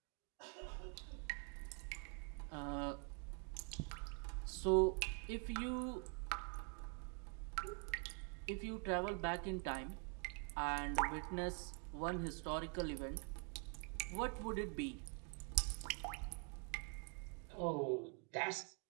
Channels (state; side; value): quieter; left; 36.9 dB